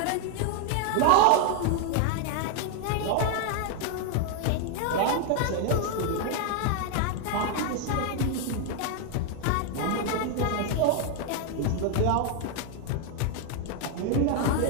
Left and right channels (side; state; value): both; different; correlation 0.00